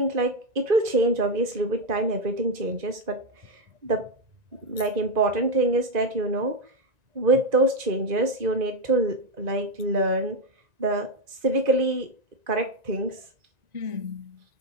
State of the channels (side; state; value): left; late; 1.9 ms